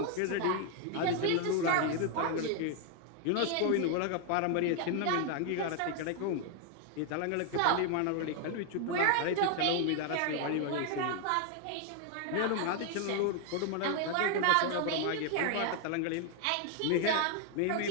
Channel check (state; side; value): different; both; correlation 0.00